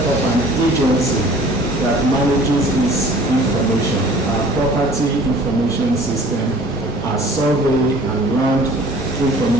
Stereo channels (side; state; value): both; normal; correlation 0.49